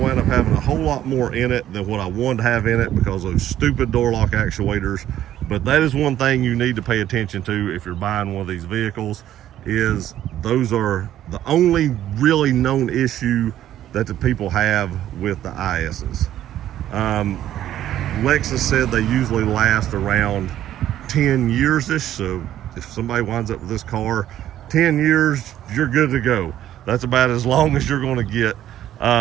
up having a whole lot more in it than what I wanted to have in it because of those stupid door lock actuators. But that is one thing you need to pay attention to if you're buying one of these vehicles, is those are the only really known issue that the people have with the ISs. Lexus said they usually last around 10 years-ish, so if somebody winds up with this car 10 years, you're good to go. That's about as long as you're going to get.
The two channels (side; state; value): left; quieter; 12.1 dB